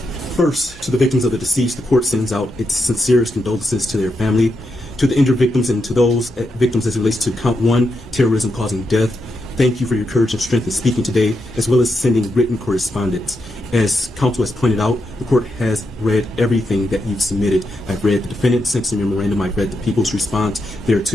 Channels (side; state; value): both; normal; correlation 0.84